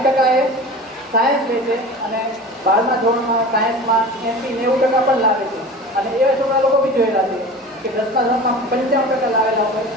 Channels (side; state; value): both; normal; correlation 0.36